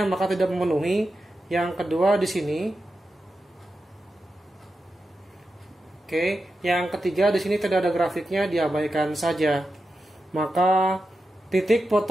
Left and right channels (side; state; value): both; normal; correlation 0.90